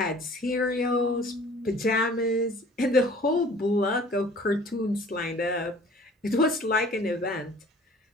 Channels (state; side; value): normal; both; correlation 0.50